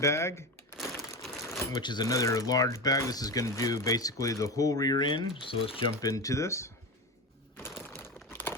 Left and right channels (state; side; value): normal; both; correlation 0.22